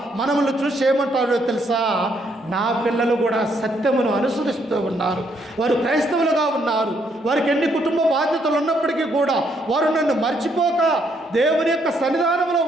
మనల్ని చూసి ఏమంటాడో తెలుసా? నా పిల్లలు కూడా సత్యమును అనుసరిస్తూ ఉన్నారు, వారు క్రైస్తవులుగా ఉన్నారు, వారికి ఎన్ని కుటుంబ బాధ్యతలు ఉన్నప్పటికీ కూడా వారు నన్ను మర్చిపోక దేవుని యొక్క సన్నిధానంలో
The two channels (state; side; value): normal; both; correlation 0.72